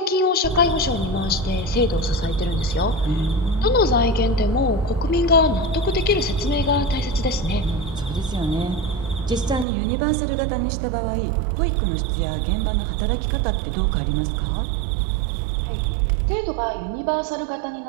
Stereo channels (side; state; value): left; drops out; at 9.7 s